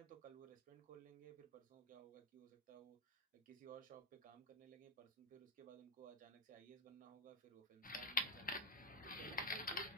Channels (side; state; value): both; normal; correlation 0.03